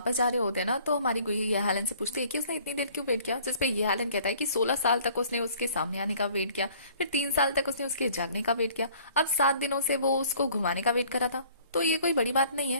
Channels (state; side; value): inverted; both; correlation -0.55